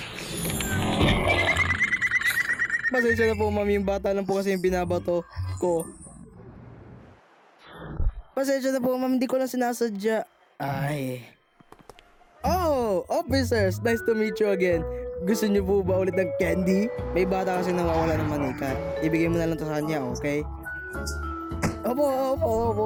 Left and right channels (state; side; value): identical; both; correlation 1.00